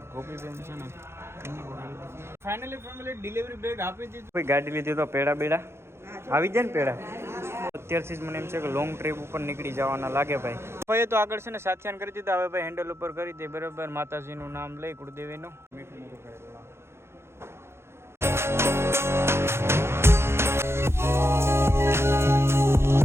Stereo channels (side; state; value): left; late; 0.12 ms